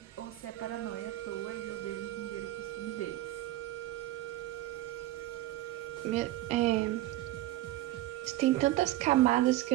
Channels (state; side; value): quieter; left; 15.6 dB